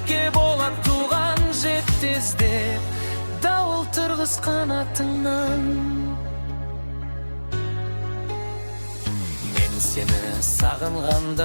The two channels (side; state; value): both; inverted; correlation -1.00